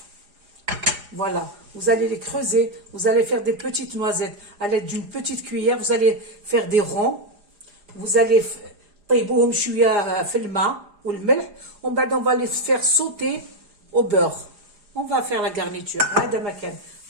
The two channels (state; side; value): late; left; 4.8 ms